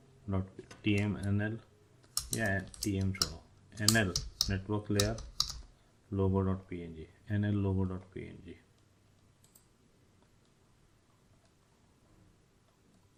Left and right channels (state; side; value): identical; both; correlation 1.00